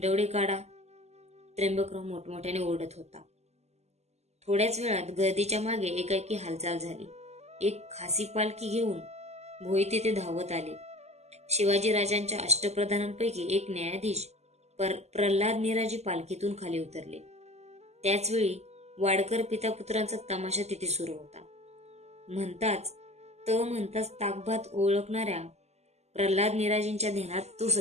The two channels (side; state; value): left; late; 0.32 ms